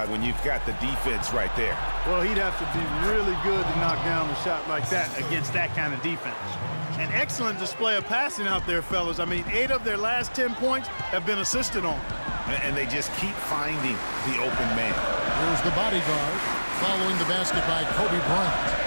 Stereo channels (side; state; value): both; inverted; correlation -1.00